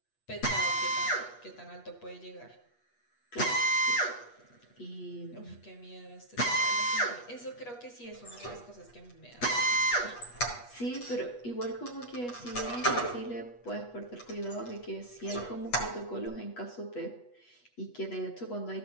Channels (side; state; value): right; late; 8.3 ms